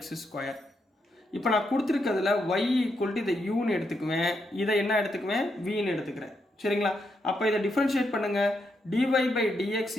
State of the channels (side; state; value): both; normal; correlation 0.81